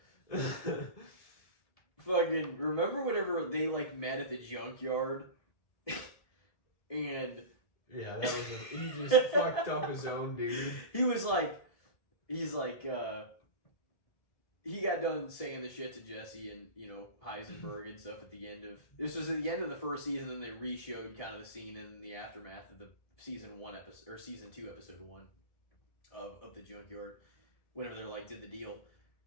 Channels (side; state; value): right; late; 1.7 ms